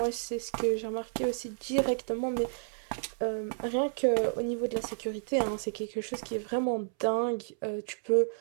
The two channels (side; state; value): left; silent; 57 dB below the other